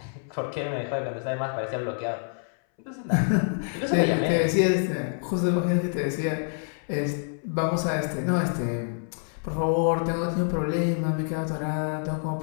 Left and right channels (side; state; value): right; silent; 60 dB below the other